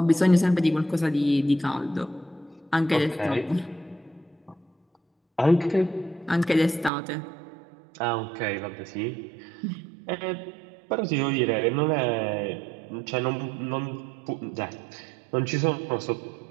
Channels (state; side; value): drops out; left; at 6.9 s